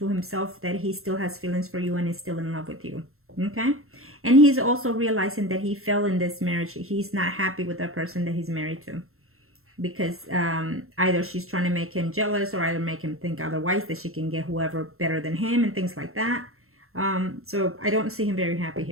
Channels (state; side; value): late; left; 0.62 ms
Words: himself that he still has feelings for you and is still in love with you, okay? And he's also realizing that he fell in this marriage. He's not happy with the person that he's married to, because either she's trying to make him jealous, or either make him think otherwise, that she can get whoever better than him and things like that. So I don't see him very happy